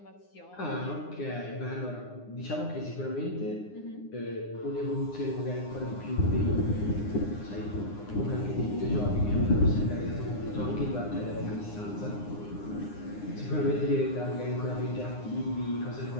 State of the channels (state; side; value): late; right; 9.7 ms